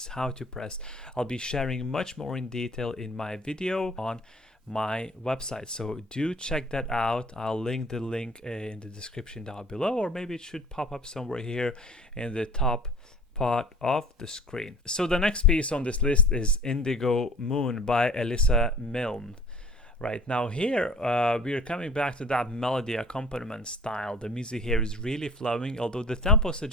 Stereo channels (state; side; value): normal; both; correlation 0.47